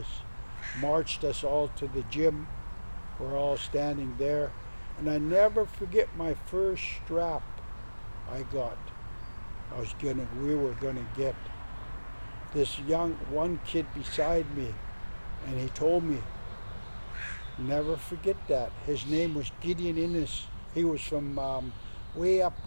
Marched us all to the gym. We're all standing there. And I never forget my first strap I got. We were gonna get this one kid beside me, and he told me, never forget that. His name was Gideon Innes. He was from way up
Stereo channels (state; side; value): inverted; both; correlation -1.00